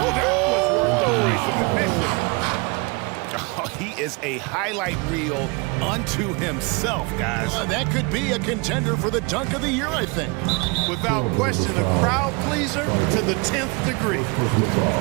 that was worth the price of admission. Oh, he is a highlight reel unto himself, guys. That could be a contender for the dunk of the year, I think. Without question, a crowd pleaser to the 10th degree.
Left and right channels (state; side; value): quieter; left; 29.1 dB